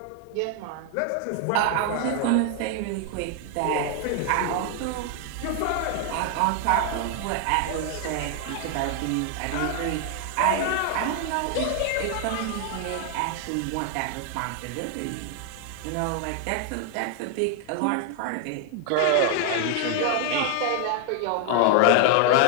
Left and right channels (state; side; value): different; both; correlation 0.00